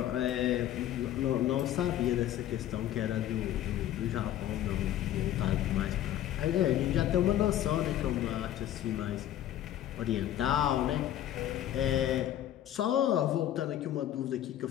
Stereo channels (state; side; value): quieter; right; 12.1 dB